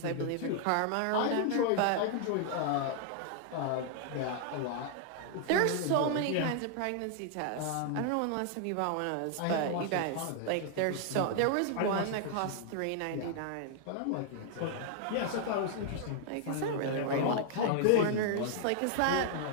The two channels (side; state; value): both; different; correlation 0.00